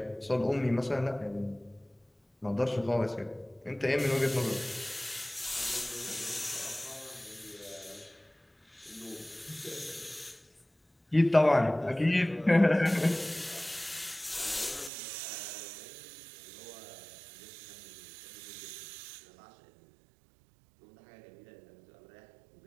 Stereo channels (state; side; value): drops out; left; at 14.9 s